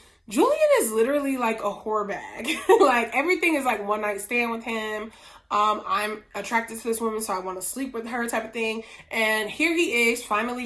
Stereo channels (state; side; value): identical; both; correlation 1.00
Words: Julian is literally like a whore bag. Like everything is like one night stand with him. I'm attracted to this woman, so I want to sleep with her type of thing. And here he is